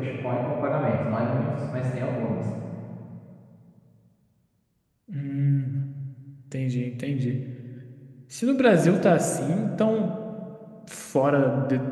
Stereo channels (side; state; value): both; identical; correlation 1.00